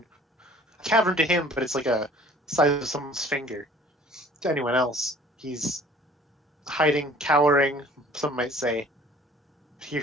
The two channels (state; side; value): normal; both; correlation 0.50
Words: A cavern to him, but it's like a size of someone's finger. To anyone else, he's hiding, cowering, some might say. Here